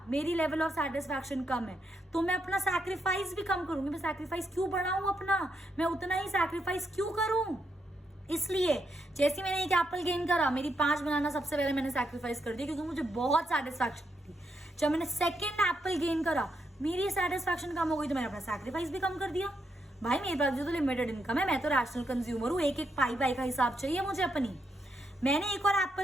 मेरी लेवल ऑफ सेटिस्फैक्शन कम है, तो मैं अपना सैक्रिफाइस भी कम करूंगी। मैं सैक्रिफाइस क्यों बढ़ाऊं अपना, मैं उतना ही सैक्रिफाइस क्यों करूं? इसलिए जैसे मैंने एक एप्पल गेन करा, मेरी 5 बनाना सबसे पहले मैंने सैक्रिफाइस कर दिया क्योंकि मुझे बहुत सेटिस्फैक्शन थी। जब मैंने सेकेंड एप्पल गेन करा, मेरी सेटिस्फैक्शन कम हो गई, तो मैंने अपना सैक्रिफाइस भी कम कर दिया। भाई मेरे पास जो तो लिमिटेड इनकम है, मैं तो रैशनल कंज्यूमर हूँ, एक एक पाई का हिसाब चाहिए मुझे अपनी। मैंने एक और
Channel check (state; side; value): normal; both; correlation 0.80